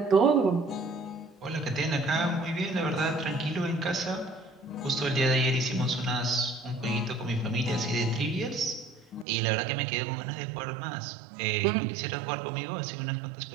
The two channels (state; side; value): drops out; left; at 9.2 s